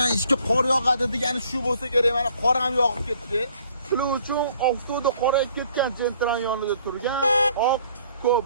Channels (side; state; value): both; inverted; correlation -0.61